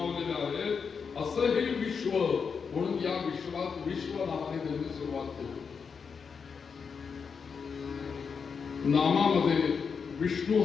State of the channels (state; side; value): quieter; right; 5.9 dB